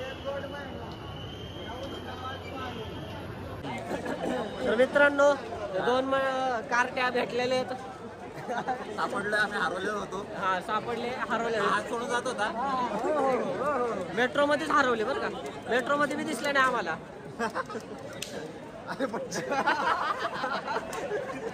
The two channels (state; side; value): identical; both; correlation 1.00